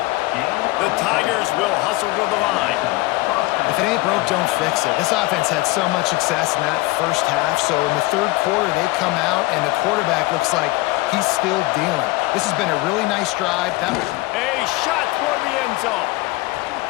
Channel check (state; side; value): quieter; right; 20.6 dB